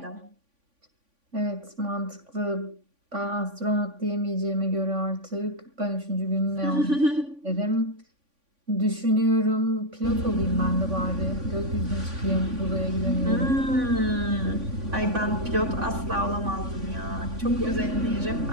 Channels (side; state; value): left; late; 3.5 ms